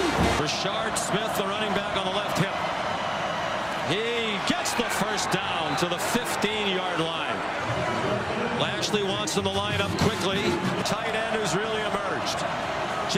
Brashard Smith, the running back on the left hip. He gets the first down to the 15-yard line. Lashley wants him to line up quickly. Tight end who's really emerged.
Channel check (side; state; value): both; identical; correlation 1.00